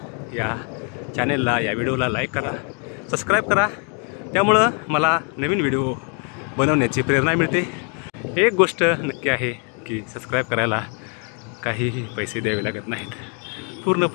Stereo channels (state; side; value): quieter; right; 38.9 dB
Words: या चॅनेलला, या व्हिडिओला लाईक करा, सबस्क्राईब करा. त्यामुळं मला नवीन व्हिडिओ बनवण्याची प्रेरणा मिळते. एक गोष्ट नक्की आहे की सबस्क्राईब करायला काहीही पैसे द्यावे लागत नाहीत,